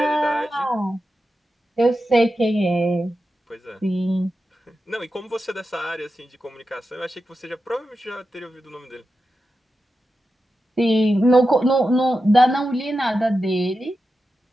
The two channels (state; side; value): normal; both; correlation 0.90